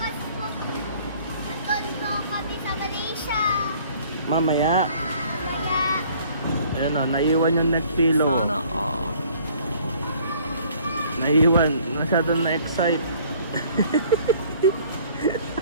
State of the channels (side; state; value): both; inverted; correlation -0.56